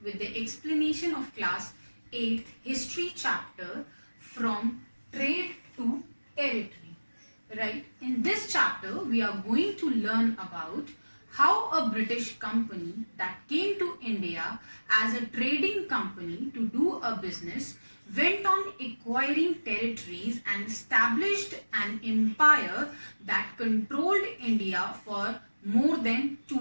with the explanation of class 8th history chapter from trade to territory. Right? In this chapter we are going to learn about how a British company that came to India as a trading company to do a business went on acquiring territories and established an empire that controlled India for more than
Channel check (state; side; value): inverted; both; correlation -1.00